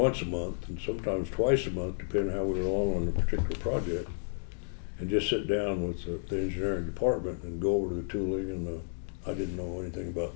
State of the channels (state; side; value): silent; right; digital silence